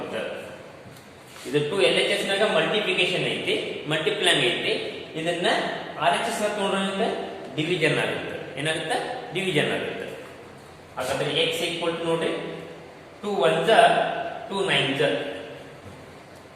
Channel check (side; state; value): both; identical; correlation 1.00